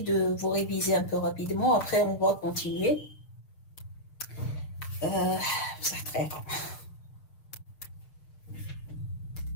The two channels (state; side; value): late; right; 6.7 ms